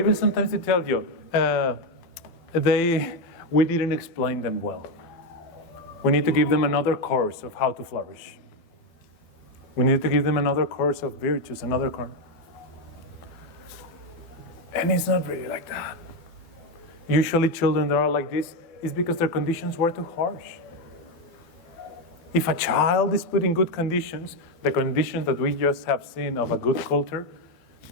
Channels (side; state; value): right; late; 12 ms